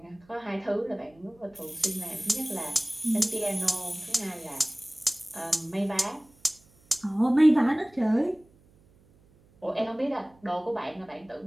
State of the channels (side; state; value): right; noise; hum, 30 dB below the sound